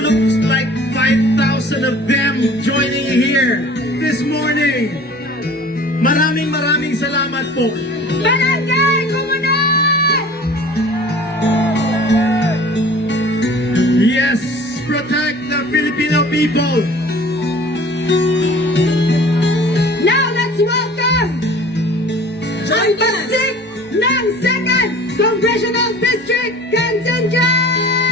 looks like 5,000 of them joining here this morning. Maraming salamat po. Barangay Komunal! Yes, protect the Filipino people. Now let's welcome ang pagsik ng 2nd Congressional District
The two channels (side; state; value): both; normal; correlation 0.45